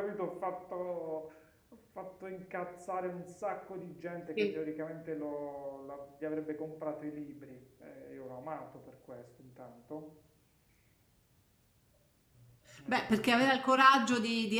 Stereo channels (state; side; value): identical; both; correlation 1.00